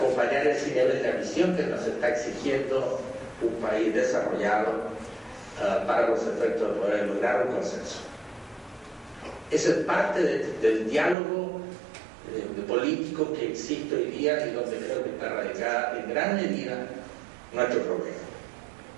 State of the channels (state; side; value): drops out; left; at 11.2 s